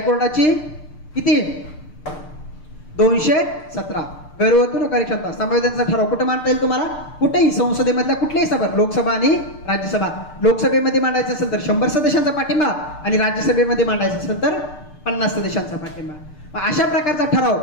किती? 217. गैरवर्तणूक कार्यक्षमता संवेदनचा ठराव कुठे मांडता येईल तुम्हाला? कुठेही, संसदेमधल्या कुठल्याही सभा, लोकसभा आणि राज्यसभा. लोकसभेमध्ये मांडायचं असेल तर 100 सदस्यांचा पाठिंबा आणि राज्यसभेमध्ये मांडायचं असेल तर 50 सदस्यांचा पाठिंबा. अशा प्रकारचा ठराव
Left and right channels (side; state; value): right; late; 6.6 ms